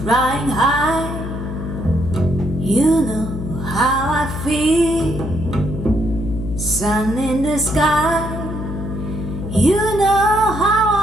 high. You know how I feel. Sun in the sky. You know how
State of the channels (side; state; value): left; noise; hum, 7 dB below the sound